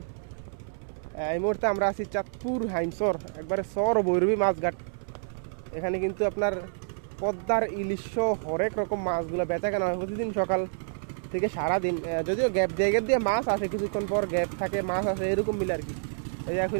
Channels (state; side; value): silent; left; 59 dB below the other